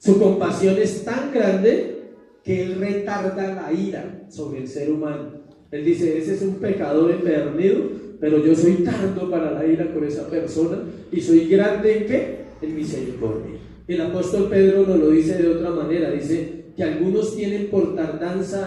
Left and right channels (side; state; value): both; identical; correlation 1.00